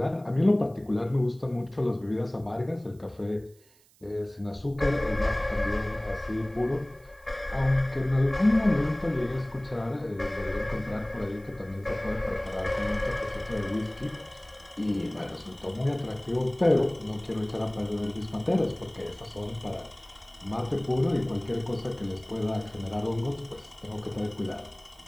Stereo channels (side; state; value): right; noise; hiss, 30 dB below the sound